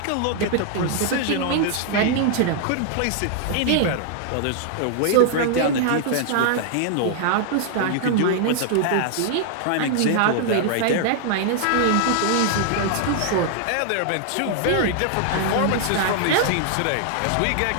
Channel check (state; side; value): different; both; correlation -0.01